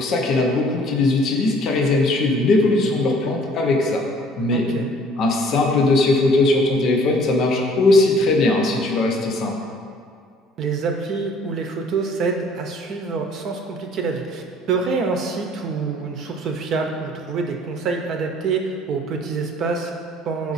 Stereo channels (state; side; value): normal; both; correlation 0.56